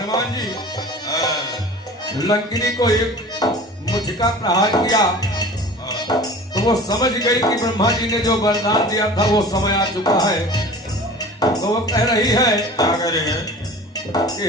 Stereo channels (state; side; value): normal; both; correlation 0.40